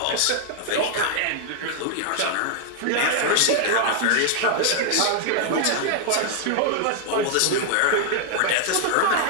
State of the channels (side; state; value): both; different; correlation 0.00